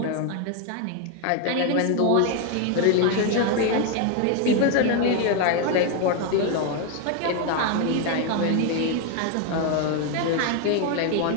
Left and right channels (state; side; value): different; both; correlation 0.01